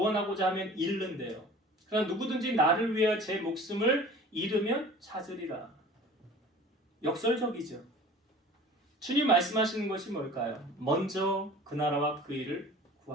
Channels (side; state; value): both; normal; correlation 0.43